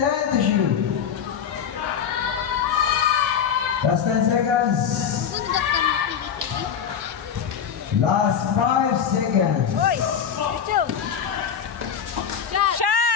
to shoot. Last 10 seconds. Last 5 seconds. Uy! Richard! Shot!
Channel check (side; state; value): right; quieter; 7.8 dB